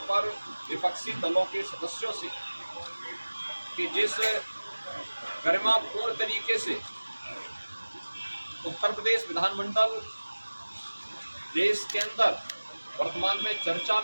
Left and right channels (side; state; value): both; inverted; correlation -1.00